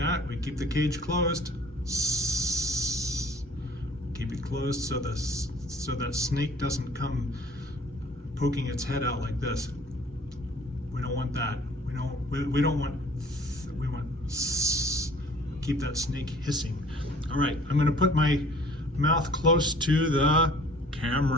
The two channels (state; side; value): normal; both; correlation 0.52